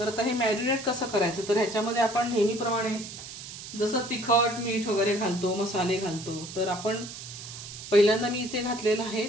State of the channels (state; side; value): noise; right; hiss, 12 dB below the sound